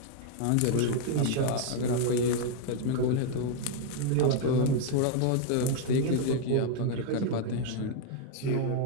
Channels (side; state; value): both; different; correlation 0.00